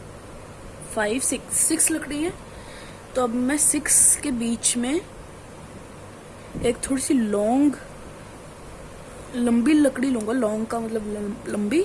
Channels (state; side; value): identical; both; correlation 1.00